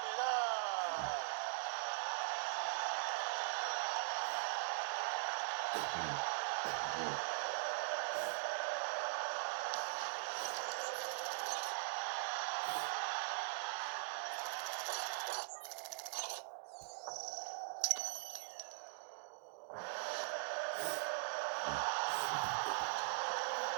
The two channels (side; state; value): left; silent; digital silence